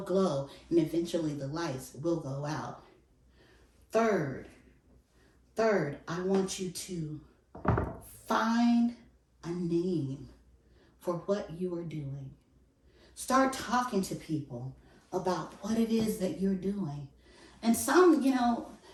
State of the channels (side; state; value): both; identical; correlation 1.00